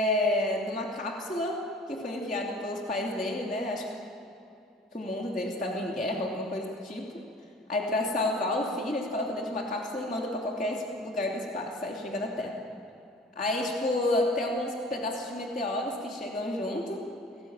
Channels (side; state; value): both; normal; correlation 0.45